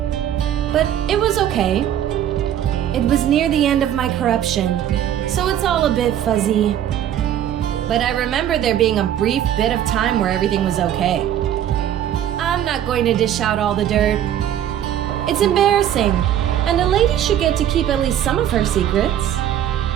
But it was okay. It was near the end of my corruption, so it's all a bit fuzzy. But I remember there being a brief bit of time where everything was okay. I'm not going to dish out all the dirt. It's embarrassing, and a lady should get to keep at least some of her secrets.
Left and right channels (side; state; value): left; quieter; 10.8 dB